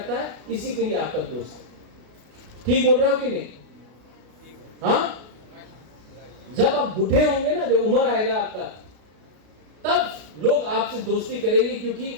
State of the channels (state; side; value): late; left; 33 ms